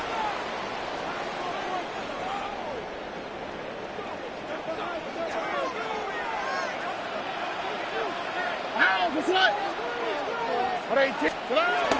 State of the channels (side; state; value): both; identical; correlation 1.00